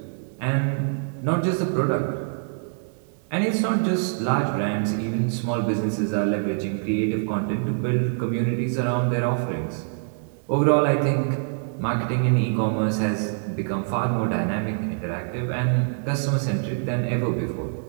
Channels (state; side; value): silent; left; 62 dB below the other